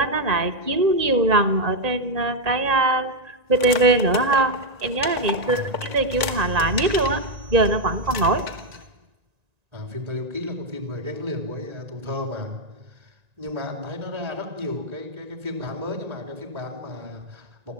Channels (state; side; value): late; left; 1.9 ms